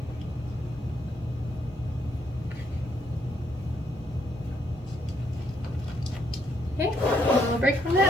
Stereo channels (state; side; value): normal; both; correlation 0.73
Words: Okay, a little break from